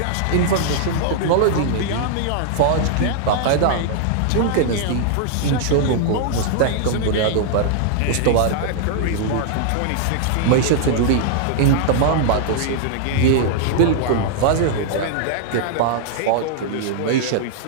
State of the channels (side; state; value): both; different; correlation -0.01